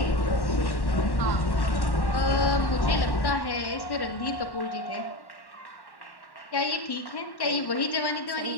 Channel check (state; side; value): late; right; 1.1 ms